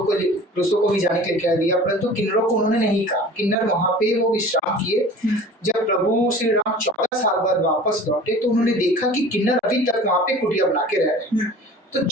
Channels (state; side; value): normal; both; correlation 0.42